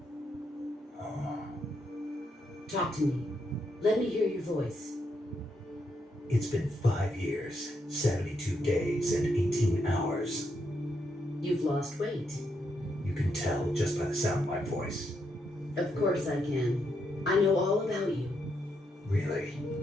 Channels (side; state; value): both; normal; correlation 0.79